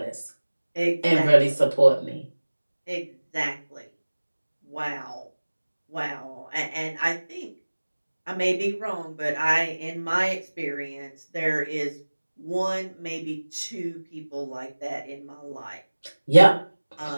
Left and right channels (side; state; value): both; inverted; correlation -1.00